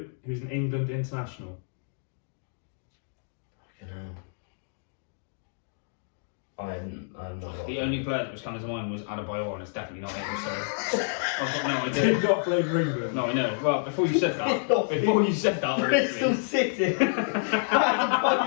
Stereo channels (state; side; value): silent; right; digital silence